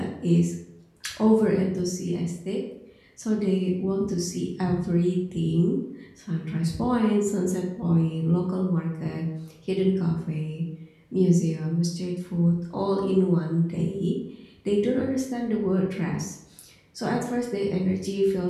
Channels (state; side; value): identical; both; correlation 1.00